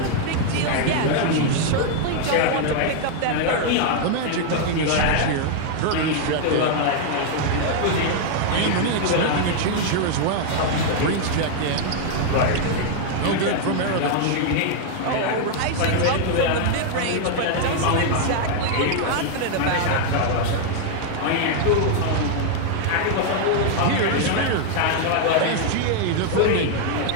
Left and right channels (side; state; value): both; different; correlation 0.00